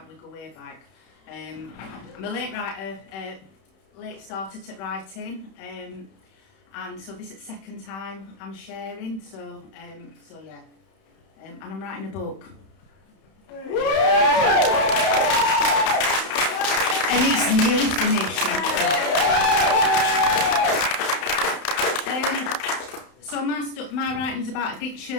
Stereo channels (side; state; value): right; late; 31 ms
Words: We go way back. I'm a late writer, late starter at writing, and so this is the second time I'm sharing. So yeah, and I'm writing a book. And it's nearly finished. So my writing's about